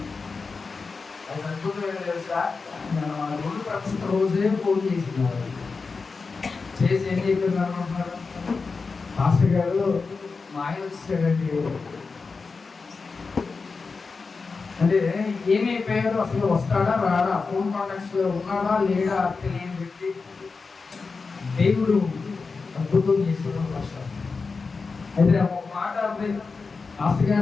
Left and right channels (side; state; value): right; quieter; 4.5 dB